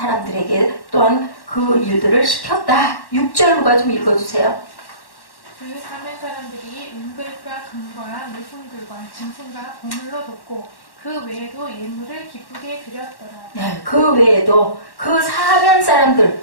또한 그 일들을 시켰다. 6절 누가 좀 읽어주세요. 그 사면 사람들이 은글과 금과 물품들과 짐승과 보물로 돕고 그 외에도 예물을 기쁘게 드렸더라. 네, 그 외에도 그 사면 사람들,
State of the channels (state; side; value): late; right; 1.1 ms